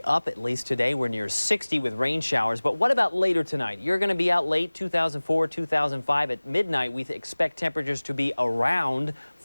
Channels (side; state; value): both; inverted; correlation -1.00